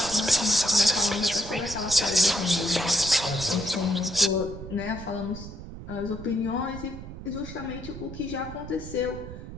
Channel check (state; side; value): noise; right; rumble, 12 dB below the sound